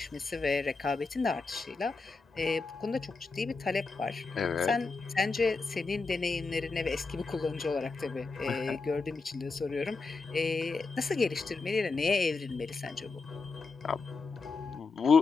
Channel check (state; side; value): quieter; right; 4.1 dB